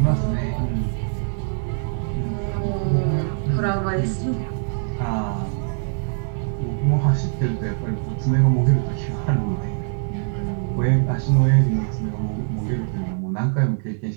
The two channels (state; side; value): silent; left; digital silence